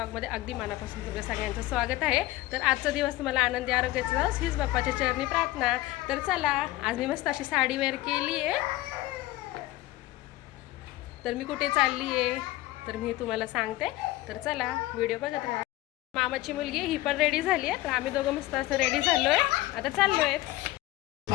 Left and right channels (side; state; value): right; quieter; 17.5 dB